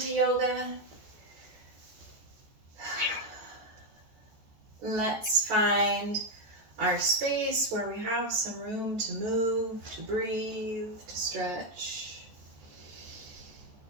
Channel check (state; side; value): late; left; 14 ms